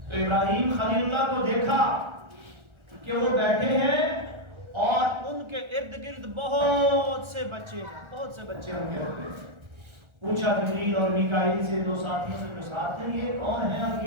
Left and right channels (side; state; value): left; late; 1.4 ms